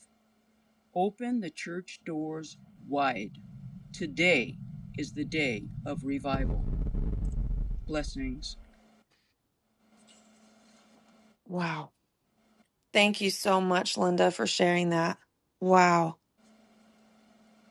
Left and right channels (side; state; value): both; identical; correlation 1.00